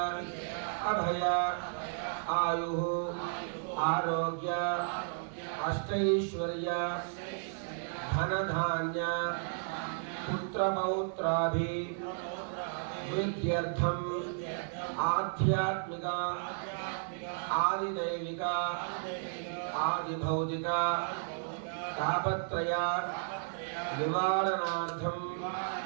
अभय आयुः आरोग्य अष्टैश्वर्य धनधान्य पुत्रपौत्राभिवृद्ध्यर्थम् आध्यात्मिक आदिदैविक आदिभौतिक तापत्रय निवारणार्थं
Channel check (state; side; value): silent; left; digital silence